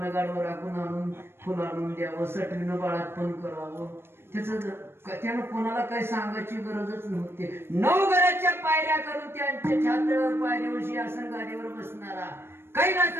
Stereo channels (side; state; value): left; late; 0.12 ms